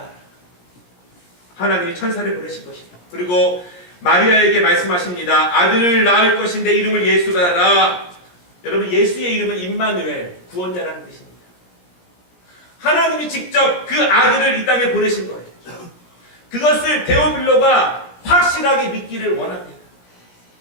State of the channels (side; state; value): right; late; 17 ms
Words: 하나님이 천사를 보내신 것입니다. 그리고 마리아에게 말씀하십니다. 아들을 낳을 것인데 이름을 예수라 하라. 여러분, 예수의 이름은 임마누엘, 구원자라는 뜻입니다. 하나님이 직접 그 아들을 이 땅에 보내신 거예요. 그것을 데오빌로가 확실하게 믿기를 원합니다.